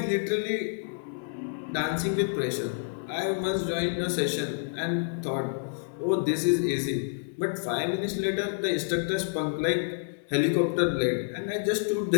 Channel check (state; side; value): silent; right; digital silence